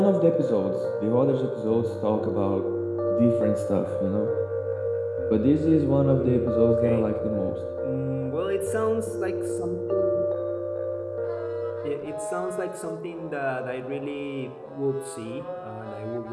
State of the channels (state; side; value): identical; both; correlation 1.00